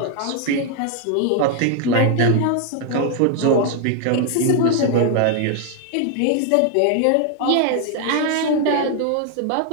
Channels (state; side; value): different; both; correlation 0.00